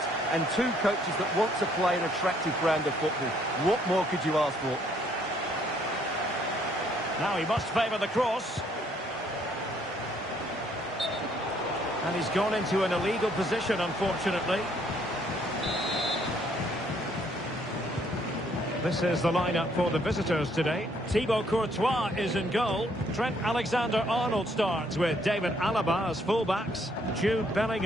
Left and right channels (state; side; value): normal; both; correlation 0.67